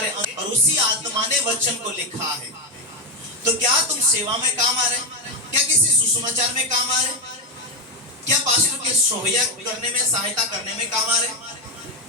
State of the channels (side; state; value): both; normal; correlation 0.09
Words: और उसी आत्मा ने वचन को लिखा है, तो क्या तुम सेवा में काम आ रहे? क्या किसी सुसमाचार में काम आ रहे? क्या पास्टर के सोहया करने में, सहायता करने में काम आ रहे?